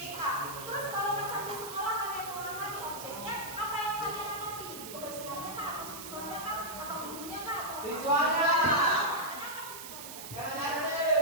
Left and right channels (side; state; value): right; noise; hiss, 10 dB below the sound